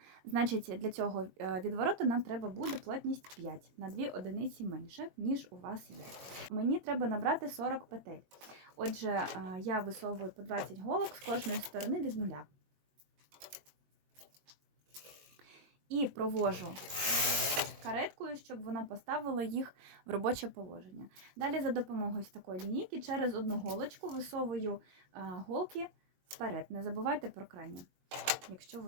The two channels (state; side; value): late; left; 21 ms